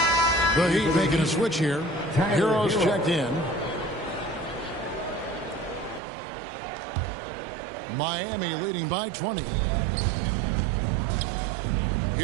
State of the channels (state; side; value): drops out; left; at 6.0 s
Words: The Heat making a switch here. Heroes checked in. Miami leading by 20.